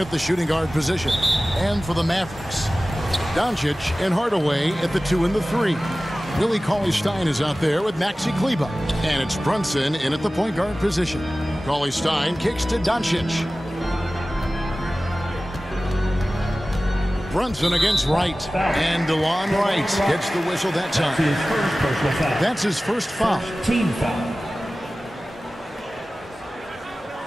the shooting guard position. And for the Mavericks, Doncic and Hardaway at the 2 and the 3. Willie Cauley-Stein is out there with Maxi Kleber. And it's Brunson in at the point guard position. Cauley-Stein kicks to Doncic. Brunson against Wright. And DeLon Wright gets the whistle that time. That's his first foul. Team foul.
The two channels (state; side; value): normal; both; correlation 0.97